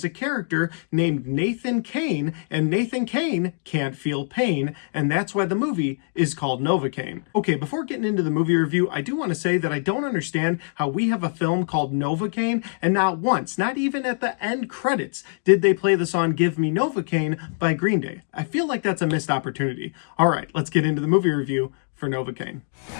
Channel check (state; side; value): silent; right; digital silence